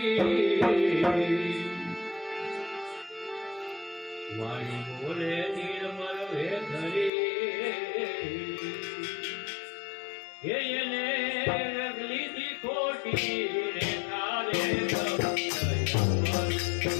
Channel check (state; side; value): drops out; right; at 7.1 s